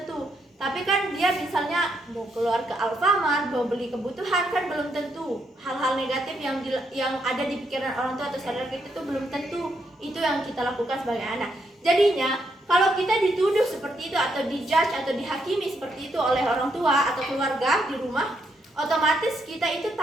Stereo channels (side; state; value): both; normal; correlation 0.77